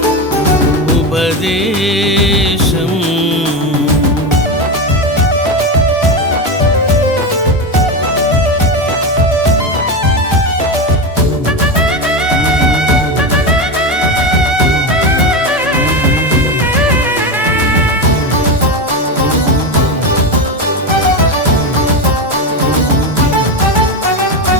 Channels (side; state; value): both; normal; correlation 0.16